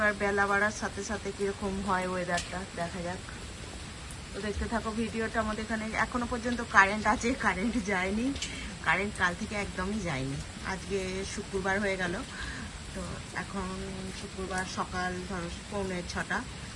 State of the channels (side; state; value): both; identical; correlation 1.00